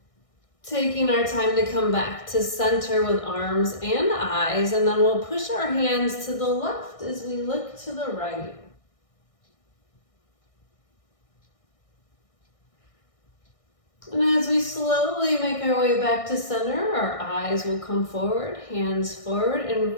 Taking our time to come back to center with arms and eyes, and then we'll push our hands to the left as we look to the right. And as we slowly make our way back to center, our eyes will come forward, hands forward, and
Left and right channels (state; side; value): late; right; 1.6 ms